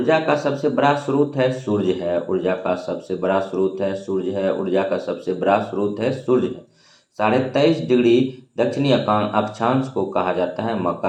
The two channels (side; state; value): both; identical; correlation 1.00